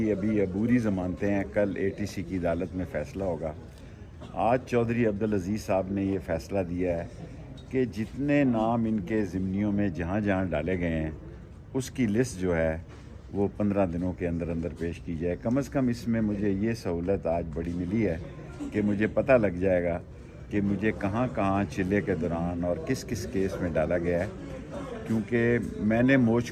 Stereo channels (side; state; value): both; identical; correlation 1.00